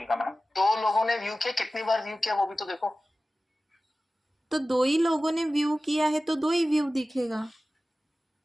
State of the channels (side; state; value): both; normal; correlation 0.96